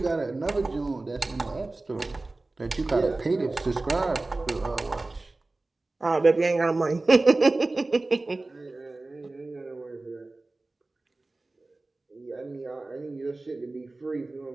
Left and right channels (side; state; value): left; quieter; 3.1 dB